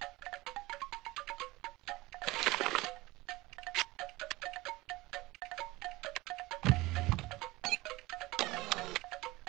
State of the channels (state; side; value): quieter; left; 20.2 dB